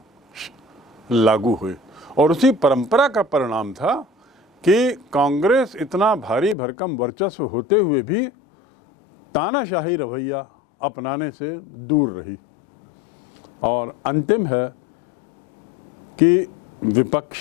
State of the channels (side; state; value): right; drops out; at 6.6 s